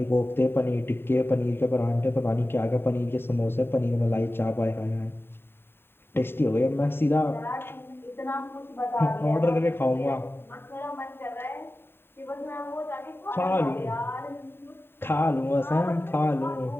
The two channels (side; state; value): right; late; 0.11 ms